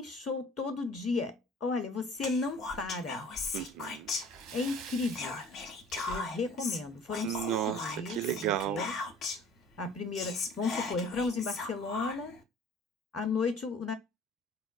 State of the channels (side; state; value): both; normal; correlation 0.48